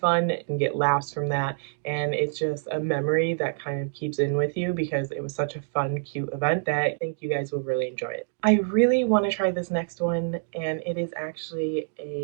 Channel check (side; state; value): left; silent; digital silence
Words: and get laughs from that. And it's just a memory that kind of keeps in with you because it was such a fun, cute event that I think you guys will really enjoy it. I really want to try this next one, and it is actually